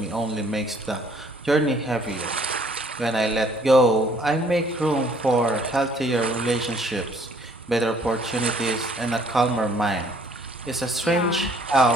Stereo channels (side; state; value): both; normal; correlation 0.60